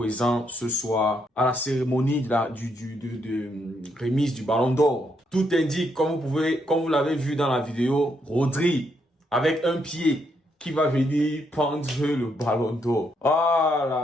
ce soir à la cérémonie de remise du Ballon d'Or. Tout indique, comme vous l'avez vu dans la vidéo, Rodri avec un pied qui va venir prendre le Ballon d'Or. Ah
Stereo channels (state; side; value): normal; both; correlation 0.76